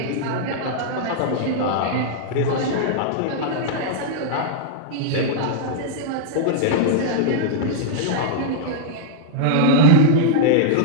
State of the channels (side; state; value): both; different; correlation -0.01